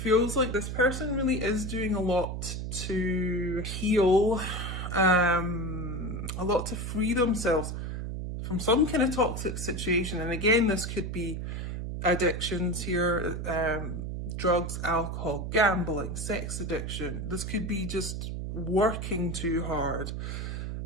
like this person really is doing a lot to heal, a lot to free themselves from some kind of toxic situation. And again, this could be addictions here, drugs, alcohol, gambling, sex addiction. This could be just working too hard.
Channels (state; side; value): noise; right; hum, 4 dB below the sound